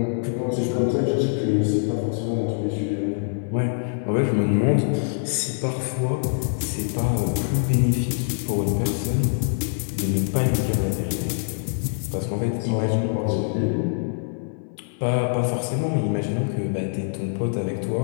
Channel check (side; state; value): right; silent; 59 dB below the other